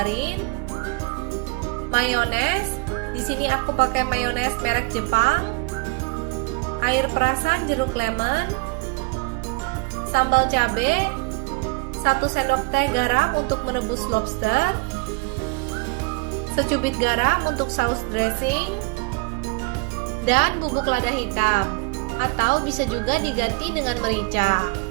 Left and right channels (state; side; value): quieter; left; 27.5 dB